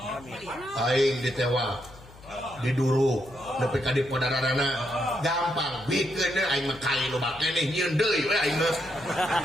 Aing ditewa. Diduru nepi ka dipodarana gampang bikeun aing mah kai loba keneh nyieun deui we aing mah.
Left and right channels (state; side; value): noise; left; hum, 21 dB below the sound